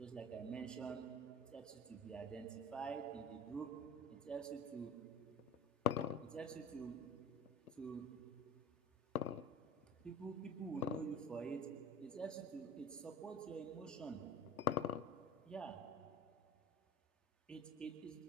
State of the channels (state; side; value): normal; both; correlation 0.39